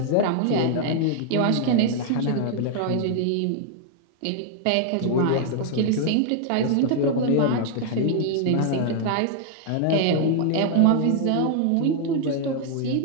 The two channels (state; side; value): different; both; correlation 0.00